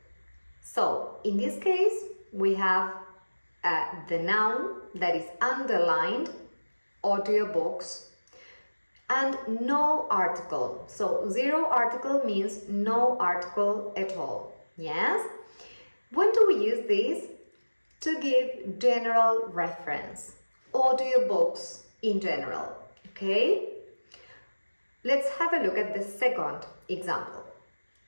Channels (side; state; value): both; inverted; correlation -1.00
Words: So, in this case, we have the noun that is underlined, audiobooks, and no article. So, zero article means no article at all. Yes? When do we use this? To give general reference. Audiobooks in general. Okay? Let's have a look at the second example.